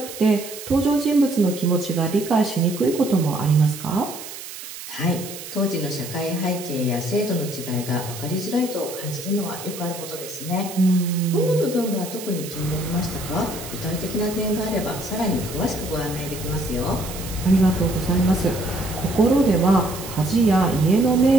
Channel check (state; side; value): noise; right; hiss, 12 dB below the sound